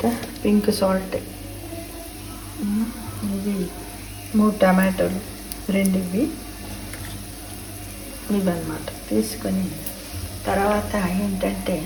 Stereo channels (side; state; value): both; identical; correlation 1.00